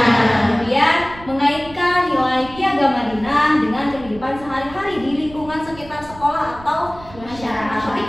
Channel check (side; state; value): right; noise; rumble, 18 dB below the sound